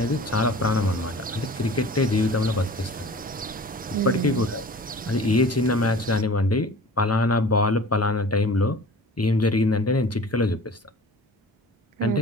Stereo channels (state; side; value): normal; both; correlation 0.43